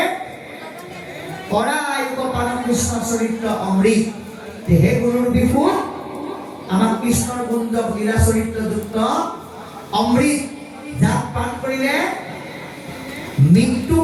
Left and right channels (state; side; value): identical; both; correlation 1.00